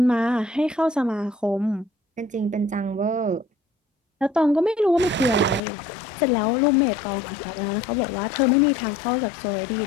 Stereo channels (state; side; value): drops out; right; at 5.6 s